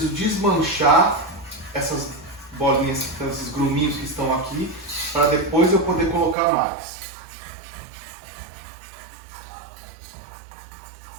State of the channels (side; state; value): left; drops out; at 6.4 s